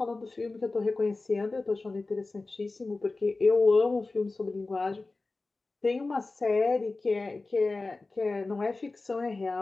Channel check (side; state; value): right; quieter; 3.4 dB